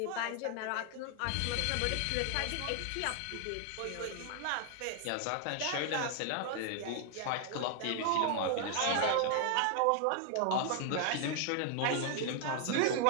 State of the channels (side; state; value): both; different; correlation 0.00